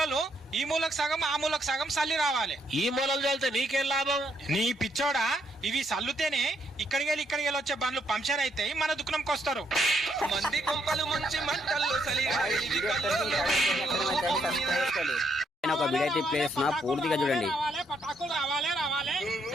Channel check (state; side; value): normal; both; correlation 0.74